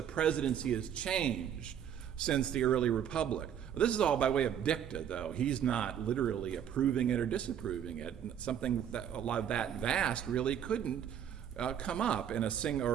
has changed since the early republic. Well, this is all by way of dicta, though. He's not literally approving it or disapproving it. Something that a lot of that vast really couldn't come up in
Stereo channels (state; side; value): quieter; left; 9.3 dB